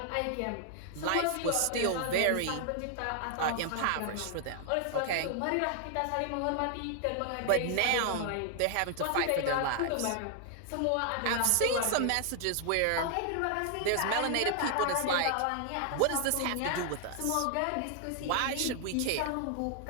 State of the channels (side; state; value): both; different; correlation 0.00